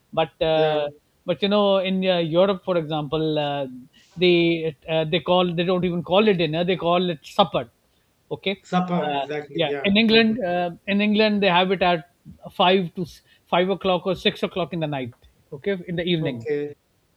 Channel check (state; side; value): identical; both; correlation 1.00